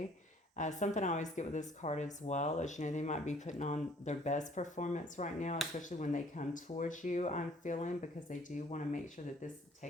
Something I always get with this card as well is, you know, they might be putting on their best performance right now, especially when they come towards you, I'm feeling, because they do want to make sure that this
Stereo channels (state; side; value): normal; both; correlation 0.58